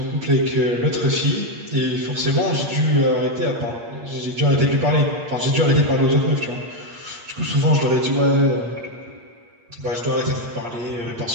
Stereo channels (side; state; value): left; late; 8.5 ms